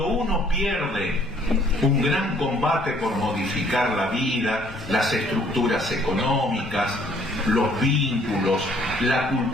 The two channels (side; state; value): both; normal; correlation 0.61